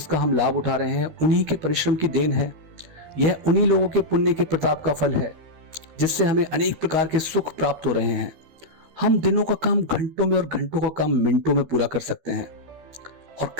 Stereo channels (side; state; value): left; late; 13 ms